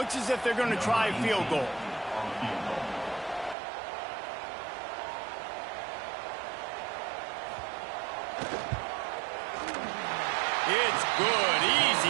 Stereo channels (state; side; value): drops out; left; at 3.6 s